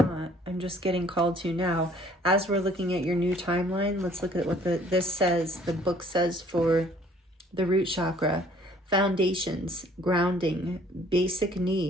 I'm just getting called to now. As we're looking at your new timeline, let's look at what this says. The book says for the root chakra: foundations, grounding, basic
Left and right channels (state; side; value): normal; both; correlation 0.57